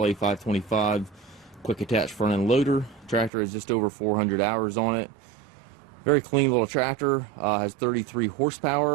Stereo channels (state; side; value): drops out; left; at 3.3 s